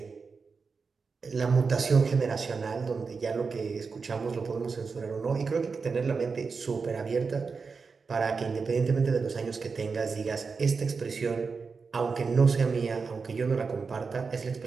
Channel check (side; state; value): left; quieter; 4.9 dB